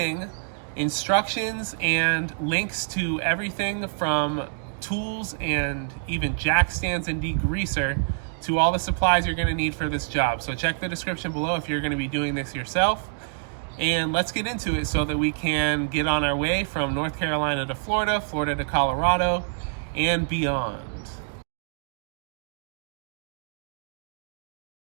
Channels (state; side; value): silent; left; digital silence